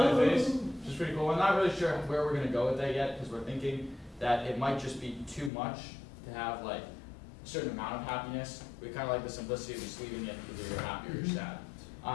face, which is pretty cool. I'm not really sure where we're going to go with that yet, because we're thinking that it might just be too much to have like a certain amount of happiness. We kind of like the simplicity of just leaving it either you're happy or you're sad.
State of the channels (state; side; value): drops out; right; at 5.5 s